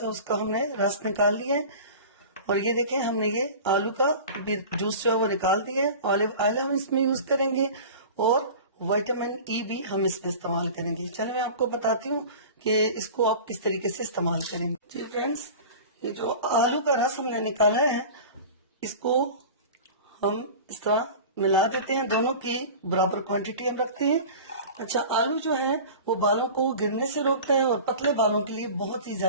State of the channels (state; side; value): inverted; both; correlation -0.37